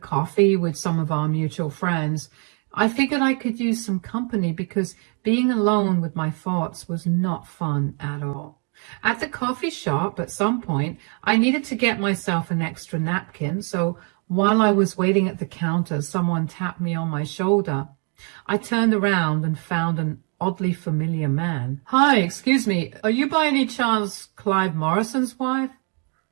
with some of our mutual friends. I figured I could use some company because being alone with my thoughts was not fun at all. At the coffee shop, at some point, I needed to get myself an extra napkin, so while I was waiting at the counter, someone tapped me on my shoulder. I turned around and found an oddly familiar man. Hi, excuse me, are you by any chance Clive Morrison's wife?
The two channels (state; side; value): quieter; left; 39.5 dB